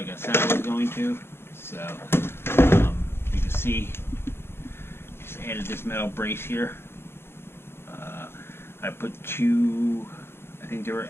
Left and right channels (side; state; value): right; late; 0.11 ms